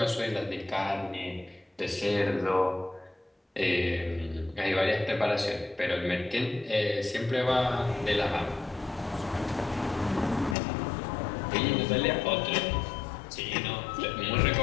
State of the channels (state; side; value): drops out; right; at 10.6 s